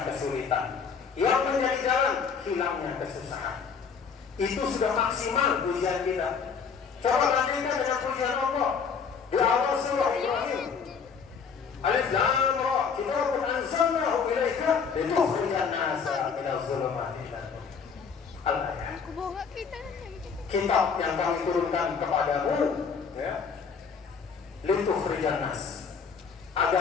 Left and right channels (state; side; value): quieter; right; 6.0 dB